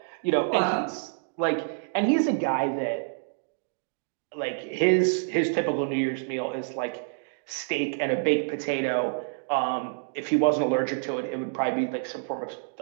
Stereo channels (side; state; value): left; silent; digital silence